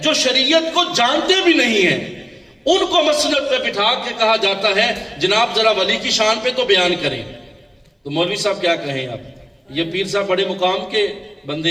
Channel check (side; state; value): both; identical; correlation 1.00